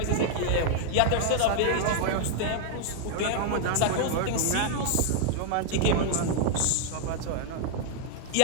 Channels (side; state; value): both; different; correlation 0.00